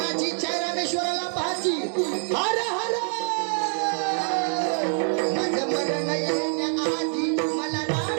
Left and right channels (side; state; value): left; silent; 56 dB below the other